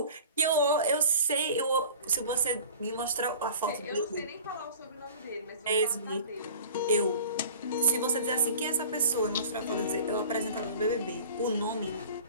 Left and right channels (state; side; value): inverted; both; correlation -0.43